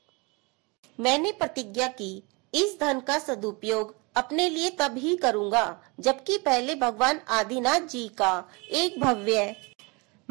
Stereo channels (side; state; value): left; quieter; 28.3 dB